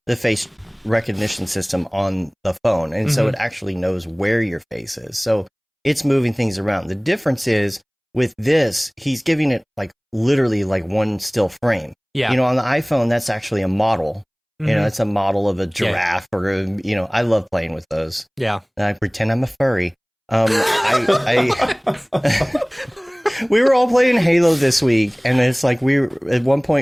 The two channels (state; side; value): identical; both; correlation 1.00